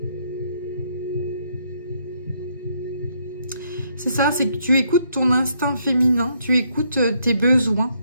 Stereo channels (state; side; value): inverted; both; correlation -0.72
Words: C'est ça, c'est que tu écoutes ton instinct féminin, tu écoutes tes besoins,